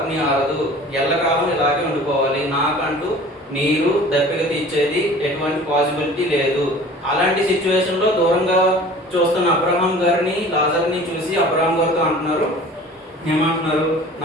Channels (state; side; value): normal; both; correlation 0.44